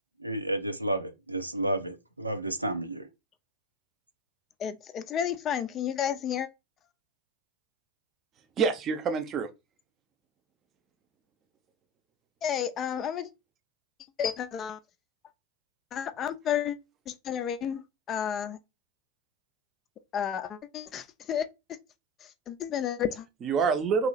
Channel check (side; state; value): both; normal; correlation 0.20